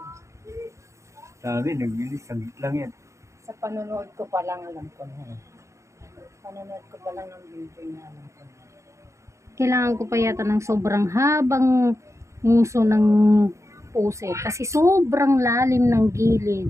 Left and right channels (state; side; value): late; left; 0.14 ms